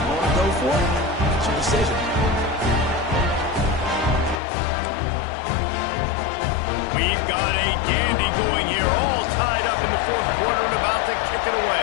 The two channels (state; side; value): drops out; right; at 4.4 s